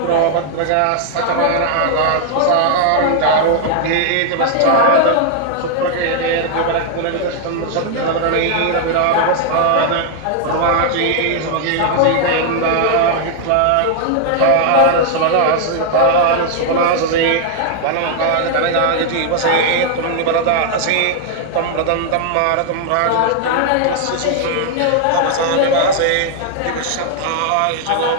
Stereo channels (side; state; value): both; different; correlation 0.00